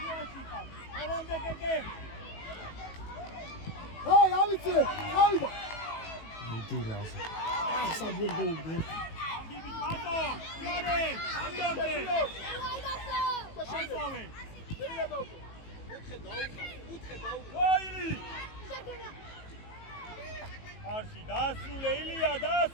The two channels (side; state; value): right; late; 18 ms